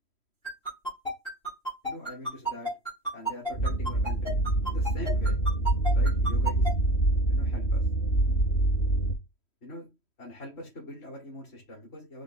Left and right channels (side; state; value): right; late; 3.1 ms